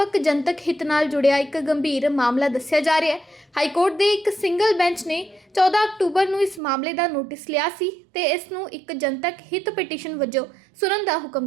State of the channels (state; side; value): drops out; left; at 6.6 s